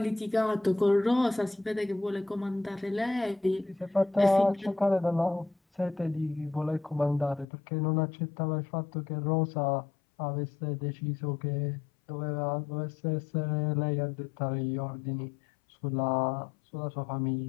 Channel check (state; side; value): drops out; right; at 7.5 s